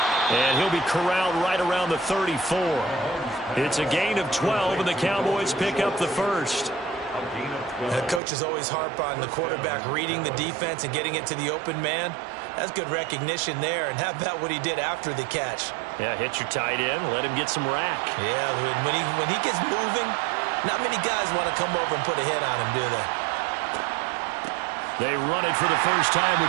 And he'll be corralled right around the 34. It's a gain of 12, and the Cowboys pick up the first. The coaches always harp on the quarterback reading the defense and getting it to the open man. That's good recognition there. And how about what he did after the catch? Yeah, hit your tight end, let him get some rack. Yeah, when he gets moving, not many guys want to come over and put a hit on him, do they? They run it for the first time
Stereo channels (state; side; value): drops out; left; at 8.2 s